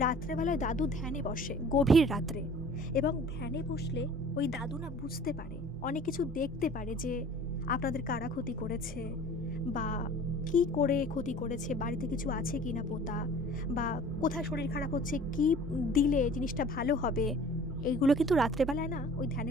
রাত্রেবেলায় দাদু ধ্যানে বসে, গভীর রাত্রে, এবং ধ্যানে বসলে ওই দাদু না বুঝতে পারে, অনেক কিছু দেখতে পারে, যে আপনাদের কারা ক্ষতি করেছে বা কি করে ক্ষতি করেছে, বাড়িতে কিছু আছে কি না পোতা, বা কোথায় শরীর খারাপ হচ্ছে, কি দিলে জিনিসটা ভালো হবে, এইগুলো কিন্তু রাত্রেবেলায় না ওই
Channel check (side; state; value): both; normal; correlation 0.47